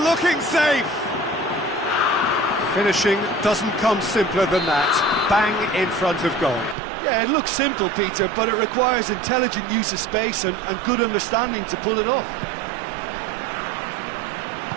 safe. Finishing doesn't come simpler than that. Bang in front of goal. Yeah, it looks simple, Peter, but it requires intelligent use of space and good understanding to pull it off.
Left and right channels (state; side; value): drops out; left; at 6.8 s